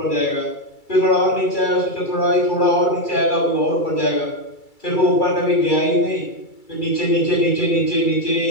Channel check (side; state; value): right; late; 2.3 ms